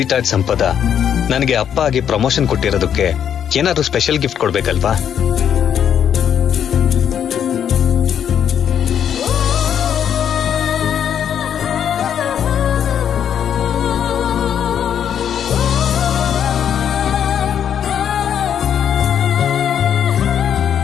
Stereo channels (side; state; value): right; quieter; 8.9 dB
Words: ಆರ್ಟ್ ಸಂಪದ ನನಗೆ ಅಪ್ಪ ಆಗಿ ಪ್ರಮೋಷನ್ ಕೊಟ್ಟಿರೋದಕ್ಕೆ ಏನಾದ್ರು ಸ್ಪೆಷಲ್ ಗಿಫ್ಟ್ ಕೊಡ್ಬೇಕಲ್ವಾ?